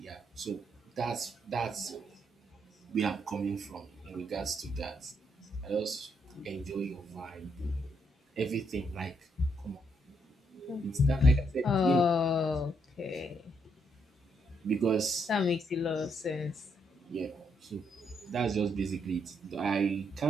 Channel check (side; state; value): both; normal; correlation 0.75